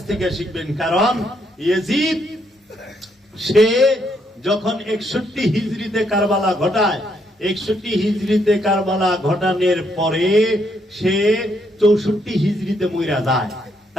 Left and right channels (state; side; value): normal; both; correlation 0.74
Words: থেকে শিখবেন? কারণ ইয়াজিদ সে যখন 61 হিজরিতে কারবালা ঘটায়, 61 হিজরিতে কারবালা ঘটানোর পরে সে 64 হিজরিতে মইরা যায়।